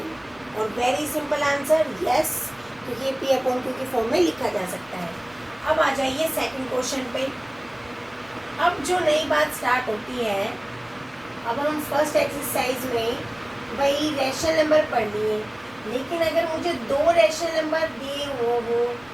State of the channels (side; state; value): right; noise; rumble, 29 dB below the sound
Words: और वेरी सिंपल आंसर यस, क्योंकि ये P अपॉन Q की फॉर्म में लिखा जा सकता है। अब आ जाइए सेकंड क्वेश्चन पे। अब जो नई बात स्टार्ट होती है, अब हम फर्स्ट एक्सरसाइज में वही रैशनल नंबर पढ़ लिए, लेकिन अगर मुझे 2 रैशनल नंबर दिए हो